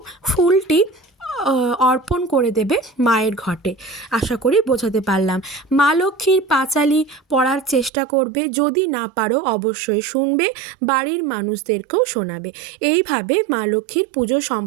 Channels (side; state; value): left; drops out; at 7.9 s